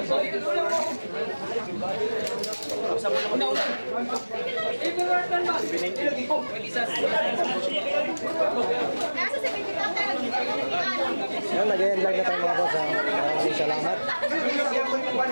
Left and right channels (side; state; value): both; inverted; correlation -1.00